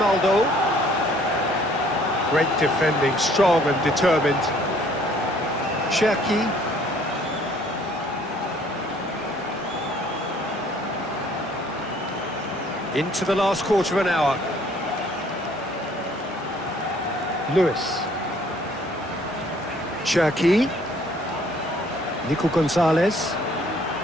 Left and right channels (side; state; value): both; normal; correlation 0.59